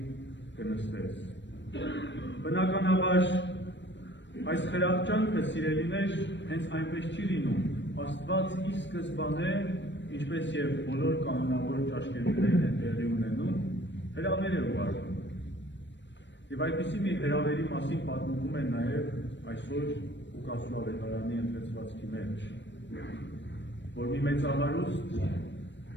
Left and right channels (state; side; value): late; right; 0.53 ms